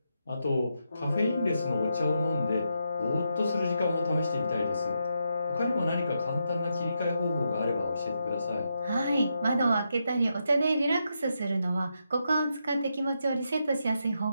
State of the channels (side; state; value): both; inverted; correlation -0.83